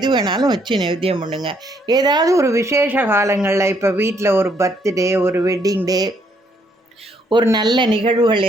வேணாலும் வச்சு நைவேத்தியம் பண்ணுங்க. ஏதாவது ஒரு விசேஷ காலங்களில் இப்போ வீட்டில் ஒரு பர்த்டே, ஒரு வெட்டிங் டே, ஒரு நல்ல நிகழ்வுகள்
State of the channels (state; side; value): normal; both; correlation 0.70